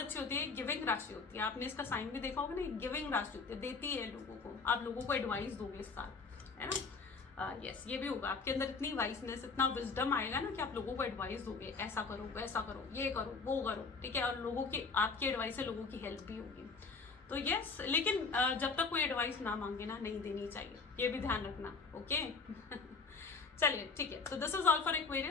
होती है, गिविंग राशि होती है। आपने इसका साइन भी देखा होगा ना, गिविंग राशि होती है, देती है लोगों को। आप लोगों को एडवाइस दोगे इस साल, है ना। यस, ये भी होगा आपके अंदर इतनी वाइसनेस, इतना विजडम आएगा ना कि आप लोगों को एडवाइस दोगे, ऐसा करो, वैसा करो, ये करो, वो करो, ठीक है। और लोगों की, आपकी एडवाइस से लोगों की हेल्प भी होगी। तो यस, लेकिन जब तक कोई एडवाइस ना मांगे ना, नहीं देनी चाहिए, ये भी ध्यान रखना, ओके। चलिए ठीक है, तो this is all for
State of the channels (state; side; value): quieter; right; 4.7 dB